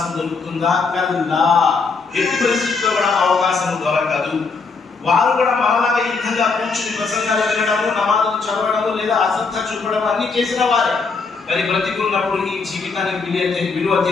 దొరుకుతుందా? కల్లా, ఎట్టి పరిస్థితుల్లో కూడా అవకాశం దొరకదు. వారు కూడా మనలాగా ఈ విధంగా కూర్చుని ప్రసంగాలు వినడము, నమాజులు చదవడము లేదా అశ్రద్ధ చూపడం అన్ని చేసిన వారే. మరి బ్రతికున్నప్పుడు ఈ జీవితానికి విలువ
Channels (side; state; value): right; quieter; 4.5 dB